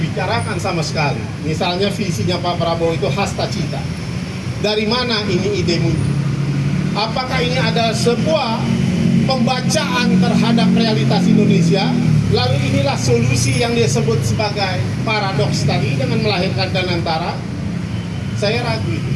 sama sekali. Misalnya visinya Pak Prabowo itu hasta cita. Dari mana ini ide muncul? Apakah ini ada sebuah pembacaan terhadap realitas Indonesia? Lalu inilah solusi yang dia sebut sebagai paradoks tadi dengan melahirkan Ganantara. Saya ragu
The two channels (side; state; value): both; identical; correlation 1.00